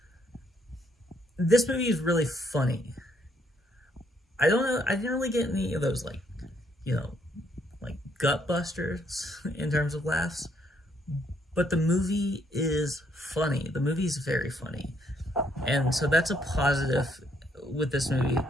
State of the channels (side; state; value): both; normal; correlation 0.70